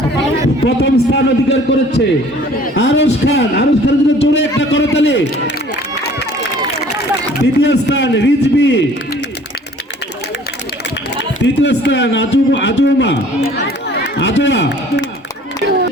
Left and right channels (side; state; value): both; normal; correlation 0.52